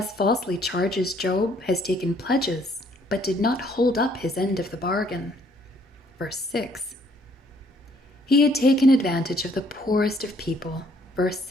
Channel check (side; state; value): both; normal; correlation 0.64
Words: falsely charges Job has taken pledges, but did not hold up his end of the bargain. Verse 6. He had taken advantage of the poorest of people. Verse